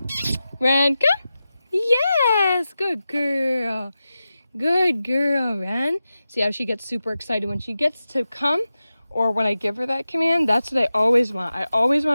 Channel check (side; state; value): both; inverted; correlation -0.93